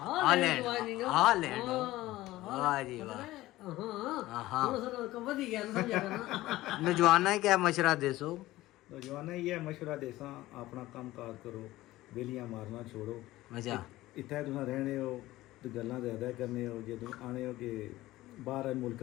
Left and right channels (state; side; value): quieter; right; 16.9 dB